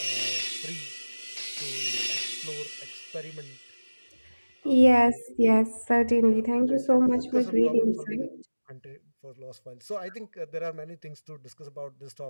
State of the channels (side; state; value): both; inverted; correlation -1.00